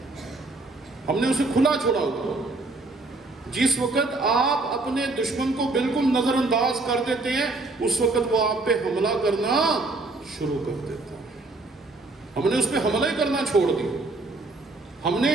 ہم نے اسے کھلا چھوڑا ہوا. جس وقت آپ اپنے دشمن کو بالکل نظر انداز کر دیتے ہیں اس وقت وہ آپ پہ حملہ کرنا شروع کر دیتا ہے. ہم نے اس پہ حملہ ہی کرنا چھوڑ دیا. ہم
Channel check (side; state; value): left; quieter; 3.2 dB